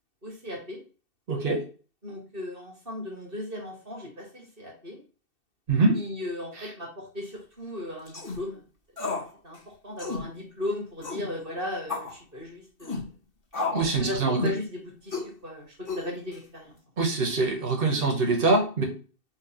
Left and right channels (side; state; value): left; late; 2.7 ms